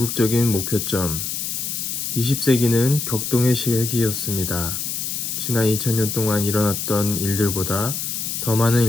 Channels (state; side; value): noise; left; hiss, 3 dB below the sound